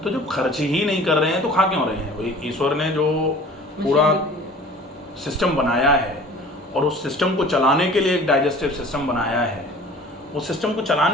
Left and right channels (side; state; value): both; normal; correlation 0.46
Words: तो जब खर्च ही नहीं कर रहे हैं तो खा क्यों रहे हैं? वही ईश्वर ने जो पूरा सिस्टम बनाया है और उस सिस्टम को चलाने के लिए एक डाइजेस्टिव सिस्टम बनाया है, उस सिस्टम को